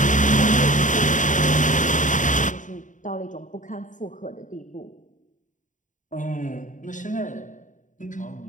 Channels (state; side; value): late; right; 0.37 ms